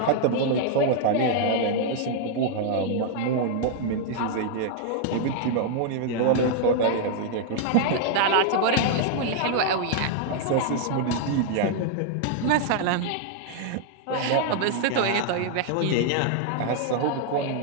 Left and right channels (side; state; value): both; different; correlation 0.00